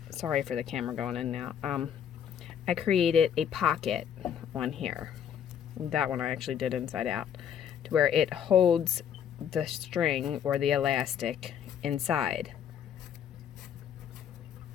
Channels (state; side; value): quieter; right; 8.8 dB